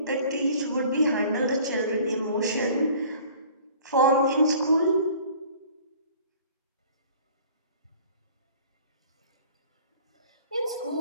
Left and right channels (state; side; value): inverted; both; correlation -0.50